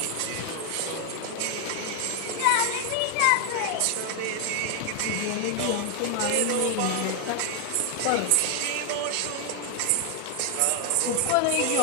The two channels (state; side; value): different; both; correlation 0.00